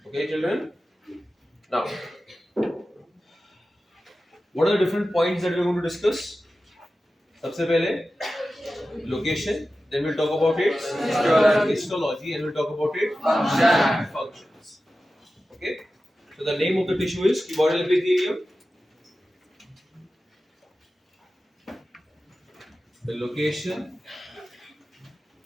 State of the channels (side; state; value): both; normal; correlation 0.94